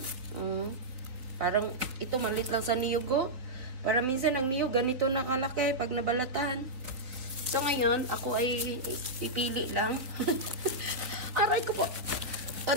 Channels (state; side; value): late; left; 4.1 ms